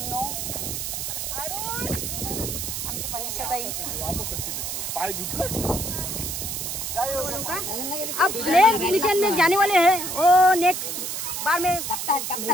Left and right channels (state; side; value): noise; right; hiss, 4 dB below the sound